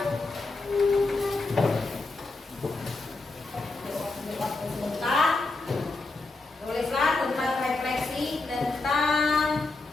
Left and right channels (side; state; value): right; quieter; 3.4 dB